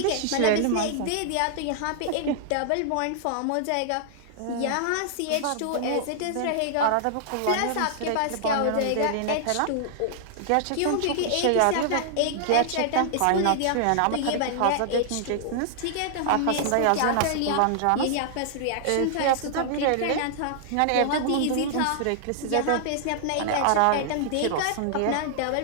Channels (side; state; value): both; different; correlation -0.01